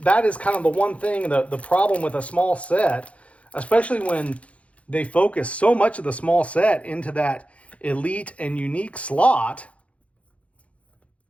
is kind of the one thing, the problem with a small set, especially when they focus so much of the small set into that elite and unique slot.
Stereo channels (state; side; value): late; right; 0.064 ms